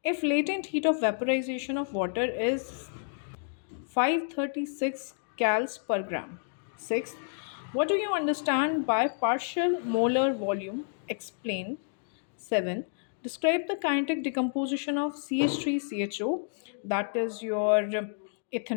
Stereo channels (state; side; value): silent; right; digital silence